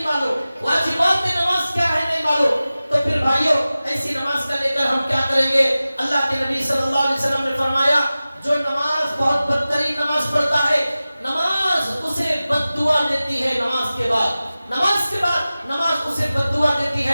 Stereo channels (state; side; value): inverted; both; correlation -0.96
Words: معلوم, واجبات نماز کیا ہے نہیں معلوم. تو پھر بھائیوں ایسی نماز کا لے کر ہم کیا کریں گے؟ اللہ کے نبی صلی اللہ علیہ وسلم نے فرمایا جو نماز بہت بدترین نماز پڑھتا ہے, نماز اسے بد دعا دیتی ہے. نماز کے بعد نماز اسے بد دعا دیتی